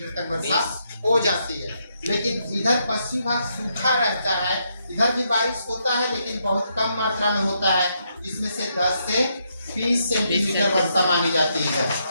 तक वर्षा हो जाती है। लेकिन इधर पश्चिम भाग सूखा रहता है, इधर भी बारिश होता है लेकिन बहुत कम मात्रा में होता है, जिसमें से 10 से 20 सेंटीमीटर वर्षा मानी जाती है,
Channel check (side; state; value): both; inverted; correlation -0.78